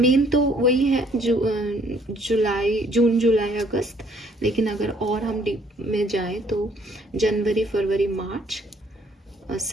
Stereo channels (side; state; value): both; normal; correlation 0.63